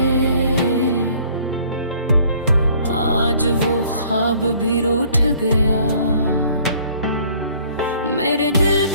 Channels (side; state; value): both; inverted; correlation -0.57